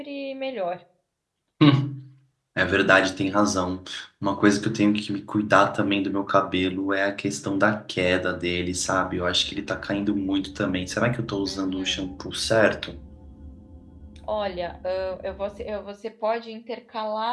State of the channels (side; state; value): both; identical; correlation 1.00